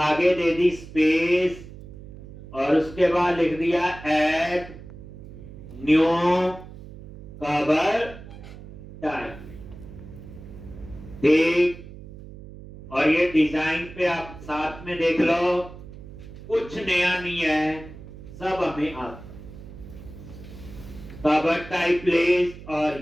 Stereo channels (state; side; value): noise; right; hum, 15 dB below the sound